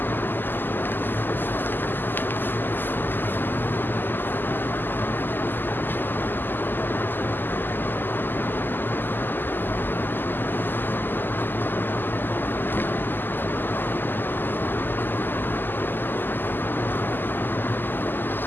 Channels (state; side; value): late; right; 0.092 ms